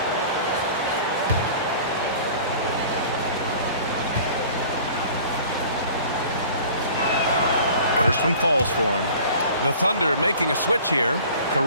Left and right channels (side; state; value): both; inverted; correlation -0.46